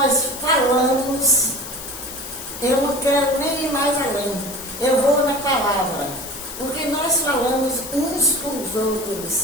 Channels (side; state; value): left; noise; hiss, 10 dB below the sound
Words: falamos, eu não quero nem ir mais além. Eu vou na palavra. Porque nós falamos uns com os